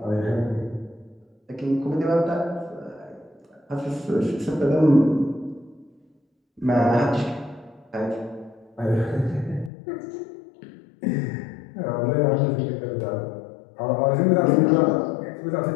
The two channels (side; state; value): right; drops out; at 9.7 s